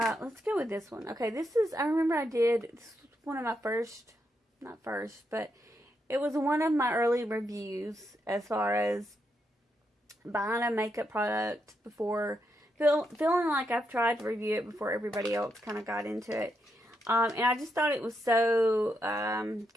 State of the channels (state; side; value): normal; both; correlation 0.81